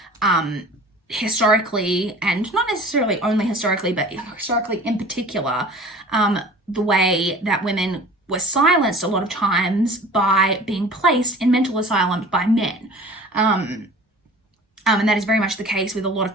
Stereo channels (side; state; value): both; normal; correlation 0.44